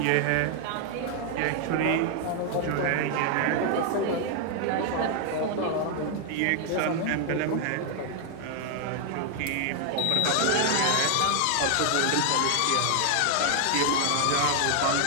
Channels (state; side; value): different; both; correlation 0.00